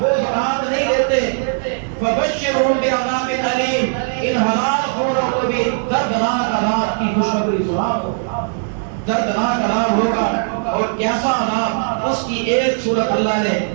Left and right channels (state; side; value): silent; left; 67 dB below the other